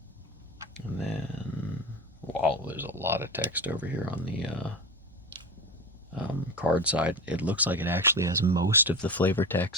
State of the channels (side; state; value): both; normal; correlation 0.27